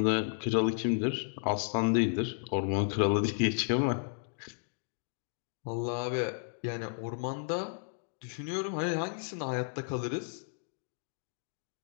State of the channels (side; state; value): right; silent; digital silence